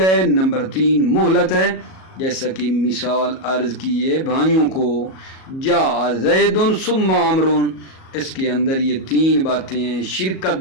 نمبر تین مہلت ہے۔ جیسا کہ مثال عرض کیے بھائیوں کو، جاء زید ثم عمر، اس کے اندر یہ تین باتیں ہیں۔ شرکت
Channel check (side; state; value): right; late; 37 ms